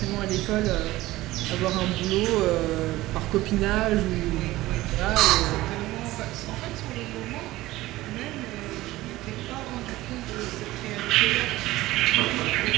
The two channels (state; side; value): quieter; left; 17.4 dB